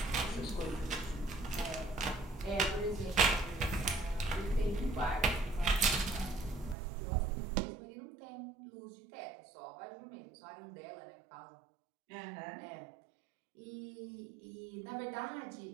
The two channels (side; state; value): left; drops out; at 6.8 s